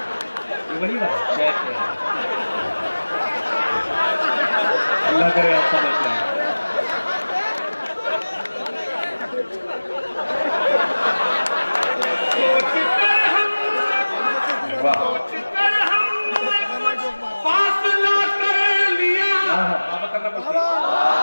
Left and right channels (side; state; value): both; inverted; correlation -1.00